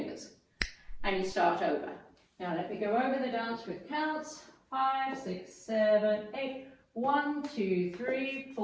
And you start over. Now let me go over the dance with counts. 5, 6, 7, 8. 1, 2, 3,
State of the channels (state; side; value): identical; both; correlation 1.00